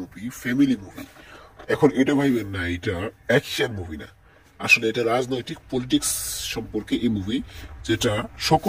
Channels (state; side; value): identical; both; correlation 1.00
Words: family movie. এখন এটা ভাইবেন না এটা অ্যাকশন মুভি না, আসলে এটা রাজনৈতিক পলিটিক্স সম্পর্কে এই মুভি, যেটা